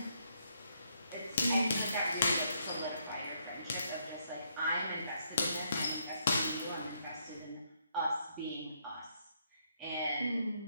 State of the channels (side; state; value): both; inverted; correlation -0.74